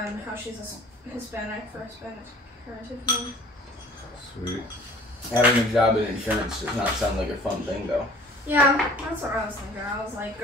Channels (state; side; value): normal; both; correlation 0.50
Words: how she's a Hispanic for Hispanic heritage name. Sweet. Having a job in insurance does not sound like a fun thing, though. Yeah, that's what I was thinking. I was like,